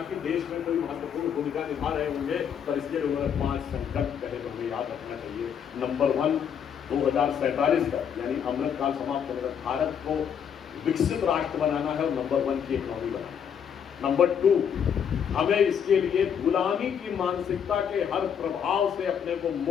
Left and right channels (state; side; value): quieter; right; 8.0 dB